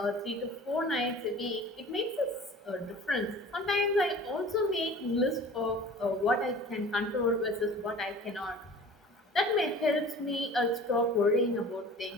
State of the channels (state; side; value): normal; both; correlation 0.43